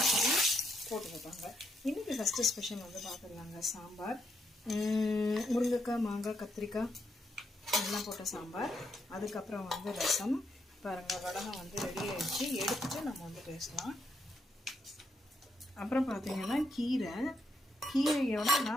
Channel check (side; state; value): both; normal; correlation 0.78